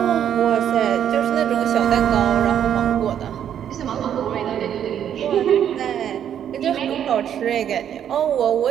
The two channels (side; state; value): left; quieter; 9.5 dB